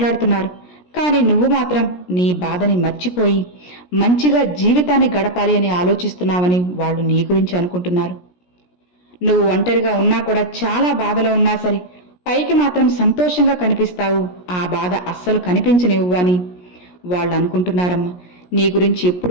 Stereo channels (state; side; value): late; right; 17 ms